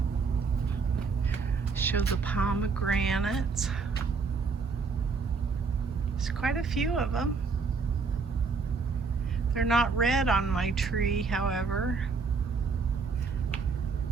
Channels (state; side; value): quieter; left; 4.8 dB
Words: Show the pomegranates. There's quite a few of them. They're not red on my tree, however.